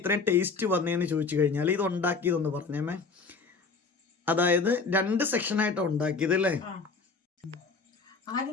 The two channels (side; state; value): right; quieter; 4.5 dB